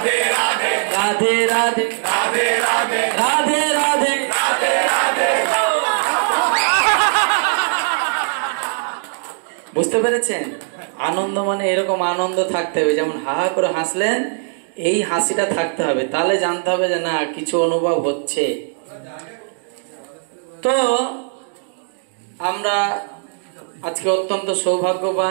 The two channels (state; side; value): silent; left; 66 dB below the other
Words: রাধে রাধে রাধে রাধে রাধে রাধে রাধে রাধে। বুঝতে পেরেছেন? আনন্দ মানে এরকম আনন্দ থাকতে হবে, যেমন হা হা করে হাসলেন এই হাসিটা থাকতে হবে, তাহলে জানতে হবে যে না কিছু অনুভব হচ্ছে। তো আমরা আজকে অত্যন্ত